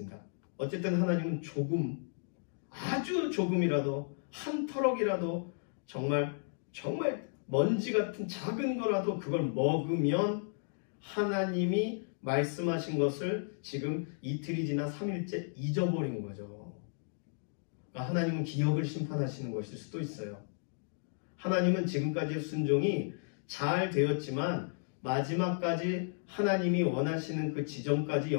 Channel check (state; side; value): silent; right; digital silence